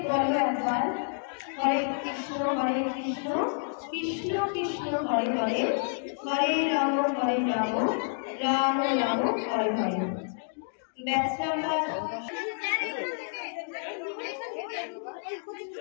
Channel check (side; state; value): right; silent; digital silence